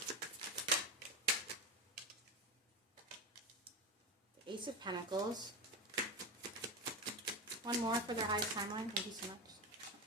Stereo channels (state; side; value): normal; both; correlation 0.18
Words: Ace of Pentacles. One more for their highest timeline. Thank you so much.